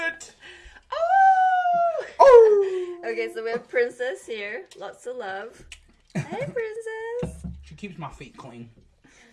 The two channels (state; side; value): identical; both; correlation 1.00